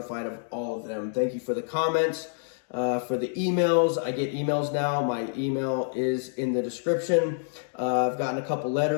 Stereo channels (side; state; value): right; silent; digital silence